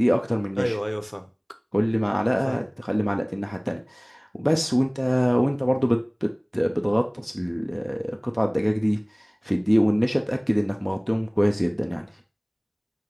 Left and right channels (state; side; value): identical; both; correlation 1.00